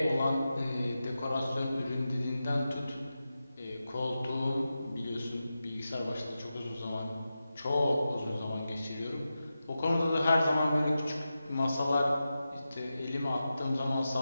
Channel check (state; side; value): inverted; both; correlation -0.92